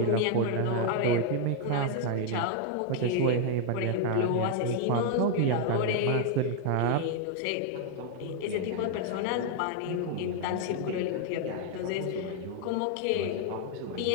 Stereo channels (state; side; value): different; both; correlation 0.00